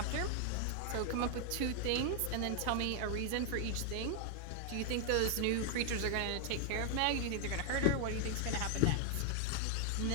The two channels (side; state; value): both; different; correlation 0.00